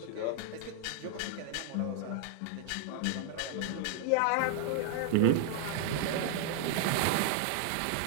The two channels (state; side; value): different; both; correlation 0.00